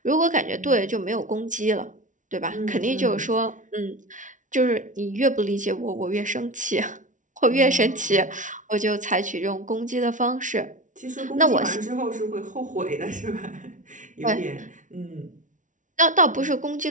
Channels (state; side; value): late; left; 0.37 ms